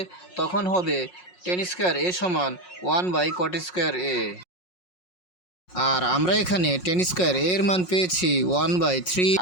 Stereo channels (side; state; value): right; late; 5.5 ms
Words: তখন হবে 10 স্কয়ার a সমান 1/cot স্কয়ার a। আর আমরা এখানে 10 স্কয়ার a এর মান পেয়েছি 1/3।